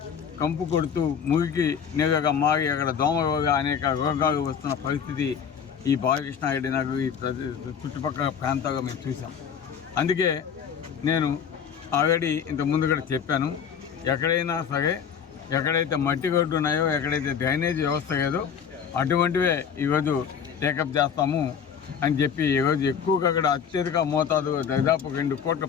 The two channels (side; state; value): right; quieter; 7.4 dB